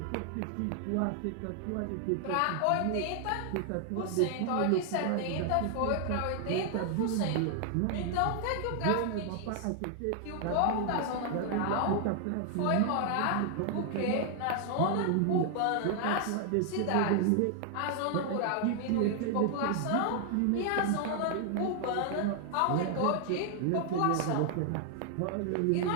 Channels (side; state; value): both; different; correlation 0.00